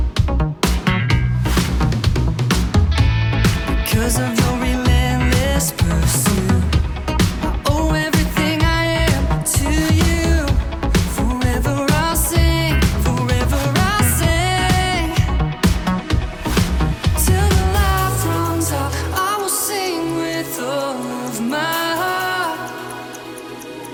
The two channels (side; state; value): both; identical; correlation 1.00